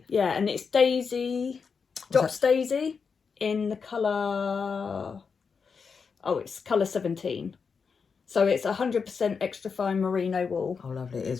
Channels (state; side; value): quieter; right; 5.6 dB